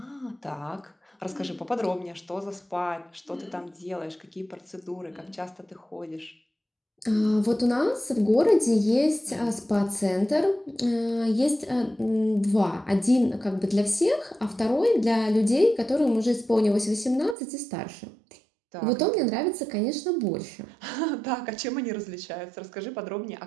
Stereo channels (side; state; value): left; drops out; at 17.4 s